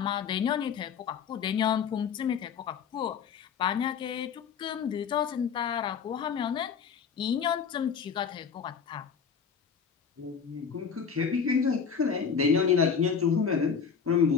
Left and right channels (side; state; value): right; quieter; 6.6 dB